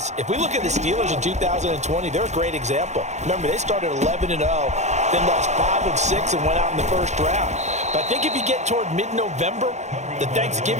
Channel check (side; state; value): left; late; 0.33 ms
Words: if we look at the Steelers in 2020, they're a great example. Remember, they started 11-0, then lost 5 of 6 and went out in the first round. But I think if you get toward mid-November, the